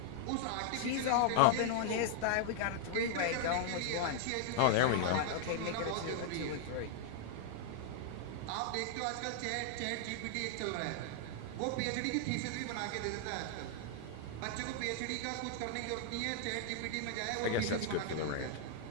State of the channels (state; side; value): different; both; correlation 0.00